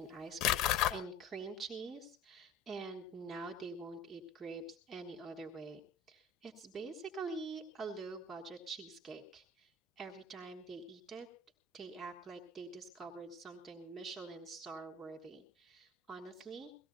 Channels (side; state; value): right; quieter; 3.8 dB